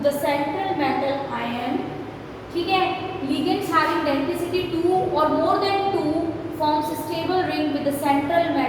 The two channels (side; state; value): both; identical; correlation 1.00